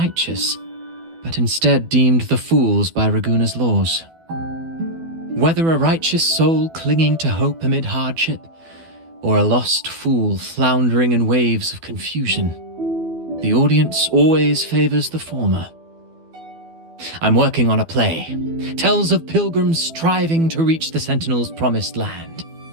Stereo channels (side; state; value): left; late; 12 ms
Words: but instead deemed the fools by Raguna's laws. Whether a righteous soul clinging to hope amid hardship, or a lost fool floundering in waves of confusion, the audience always favors the former. I'm working on a play. Tells of pilgrims striving to reach the Sentinel's promised land.